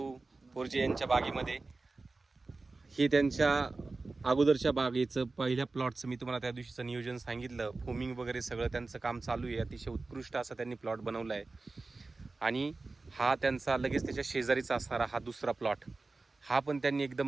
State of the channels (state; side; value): quieter; left; 3.6 dB